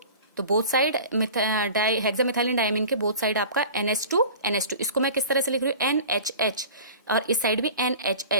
तो बोथ साइड हेक्सामिथाइलिन डायमीन के बोथ साइड आपका NH2 इसको मैं किस तरह से लिख रही हूँ, NHH, और इस साइड भी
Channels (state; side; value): inverted; both; correlation -0.40